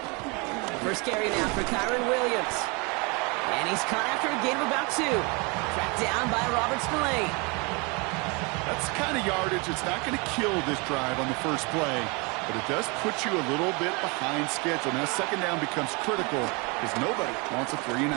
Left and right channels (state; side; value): quieter; left; 29.5 dB